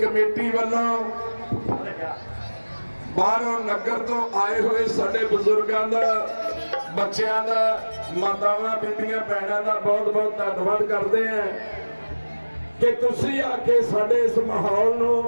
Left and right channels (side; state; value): both; inverted; correlation -1.00